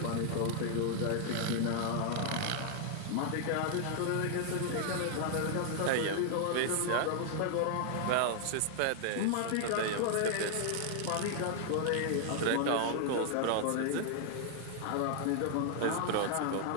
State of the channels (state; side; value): different; both; correlation 0.00